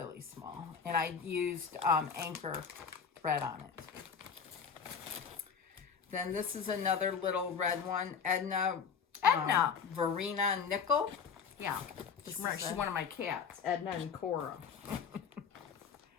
small. And I used anchor thread on it. Then this is another little red one, Edna Verena Nickel. Yeah, she's one of my cats, Edna and Cora.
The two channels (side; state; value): right; quieter; 6.4 dB